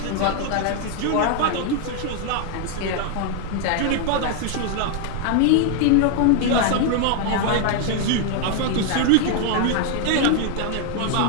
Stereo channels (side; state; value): both; different; correlation 0.00